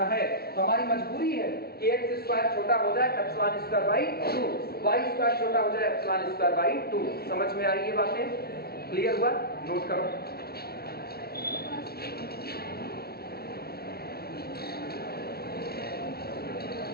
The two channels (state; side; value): late; right; 0.45 ms